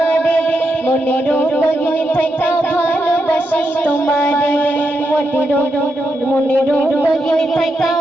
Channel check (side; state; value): both; normal; correlation 0.84